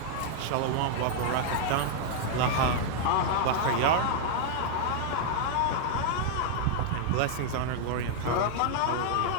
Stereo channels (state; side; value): different; both; correlation 0.00